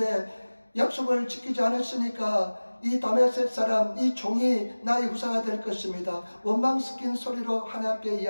약속을 지키지 않았으니까 이 다메섹 사람, 이 종이 나의 후사가 될 것입니다. 원망 섞인 소리로 하나님 앞에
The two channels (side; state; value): both; inverted; correlation -1.00